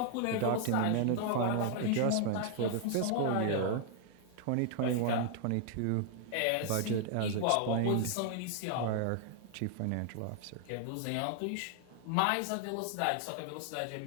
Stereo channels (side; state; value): both; different; correlation 0.00